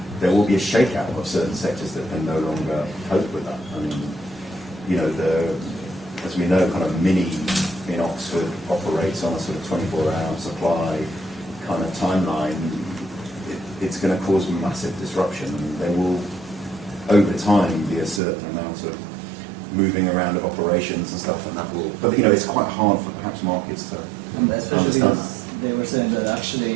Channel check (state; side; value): drops out; left; at 18.2 s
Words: a shakeout of certain sectors that can no longer cope with that. I mean, you know, as we know, kind of Mini in Oxford operates on a sort of 24-hour supply kind of timeline. It's going to cause massive disruption, and there will, over time, be a certain amount of moving around of operations and stuff, and that will. But you know, it's quite hard for perhaps markets to. And especially because they were saying that